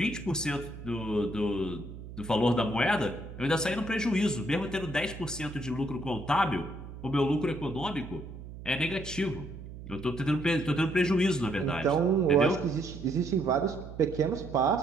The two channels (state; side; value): noise; right; hum, 13 dB below the sound